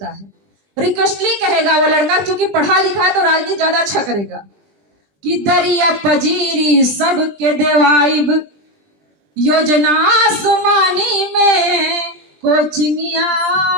है। रिक्वेस्टली कहेगा वो लड़का, क्योंकि पढ़ा लिखा है तो राजनीति ज्यादा अच्छा करेगा, कि दरिया पजीरी सबके देवाइब, योजना आसमानी में,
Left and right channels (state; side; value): late; left; 20 ms